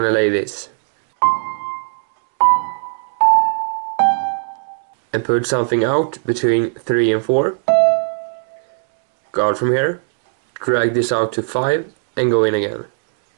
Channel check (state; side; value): silent; left; 61 dB below the other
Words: to lay this. And put something out between 3 and 4. Guard from here, drag this out to 5 and go in again.